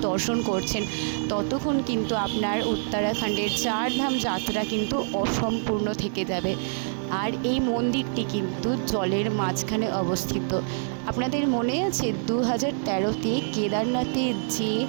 দর্শন করছেন ততক্ষণ কিন্তু আপনার উত্তরাখণ্ডের চারধাম যাত্রা কিন্তু অসম্পূর্ণ থেকে যাবে। আর এই মন্দিরটি কিন্তু জলের মাঝখানে অবস্থিত। আপনাদের মনে আছে 2013-তে কেদারনাথের যে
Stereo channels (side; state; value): left; silent; 61 dB below the other